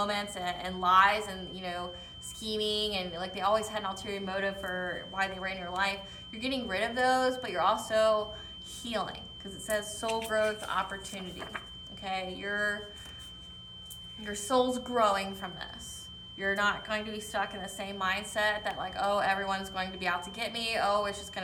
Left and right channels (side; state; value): both; identical; correlation 1.00